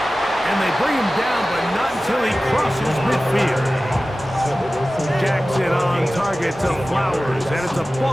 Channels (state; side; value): normal; both; correlation 0.96